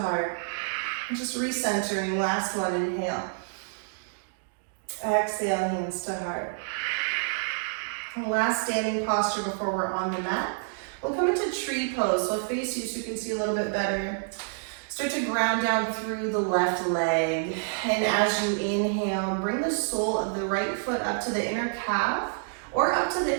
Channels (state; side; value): silent; left; digital silence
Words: Just recentering, last one, inhale. Exhale, hands to heart. And last standing posture before we're on the mat. We'll come into tree pose. So I'll face you so you can see a little bit better. Start to ground down through the left leg. And as you inhale, bring the sole of the right foot up to the inner calf or up to